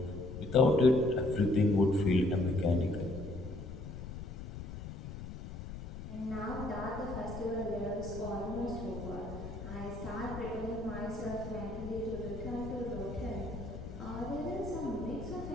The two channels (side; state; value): left; noise; rumble, 9 dB below the sound